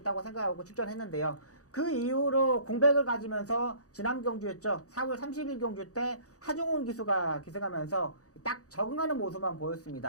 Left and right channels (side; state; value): right; late; 0.66 ms